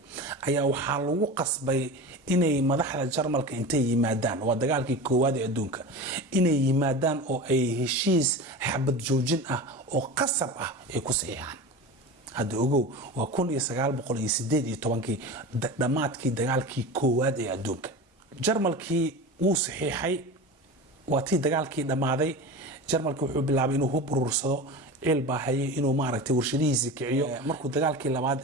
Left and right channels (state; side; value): normal; both; correlation 0.30